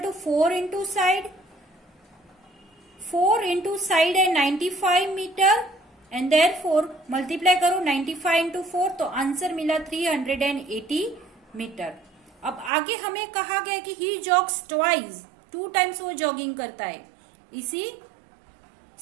4 into side, 4 into side है 95 मीटर एंड देयरफॉर मल्टीप्लाई करो 95 इंटू 4 तो आंसर मिला 380 मीटर। अब आगे हमें कहा गया कि ही जॉग्स ट्वाइस, 2 टाइम्स वो जॉगिंग करता है इसी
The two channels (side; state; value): left; drops out; at 12.7 s